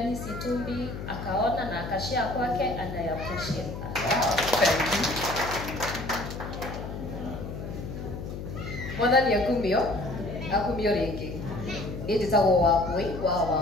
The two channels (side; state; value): left; noise; hum, 8 dB below the sound